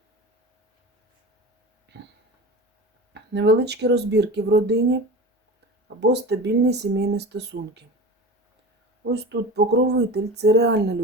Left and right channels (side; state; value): both; normal; correlation 0.33